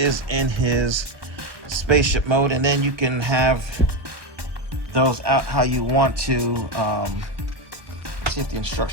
in his spaceship mode. And then you can have those out how you want to. Let's see if the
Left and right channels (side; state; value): left; late; 1.1 ms